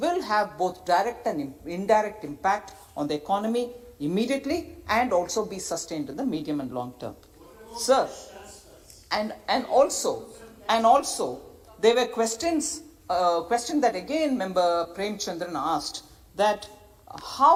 have both direct and indirect impact on the economy immediately and also be sustained in the medium and long term. Sir, and also there were questions that again Member Premchandran asked, that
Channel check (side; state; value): both; identical; correlation 1.00